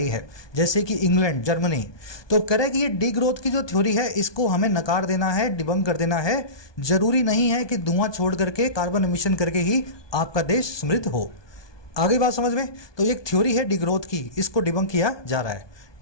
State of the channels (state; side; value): late; right; 1.2 ms